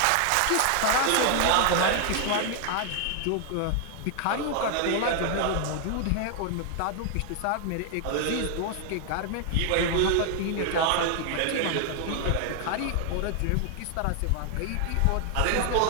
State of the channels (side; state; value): both; different; correlation 0.00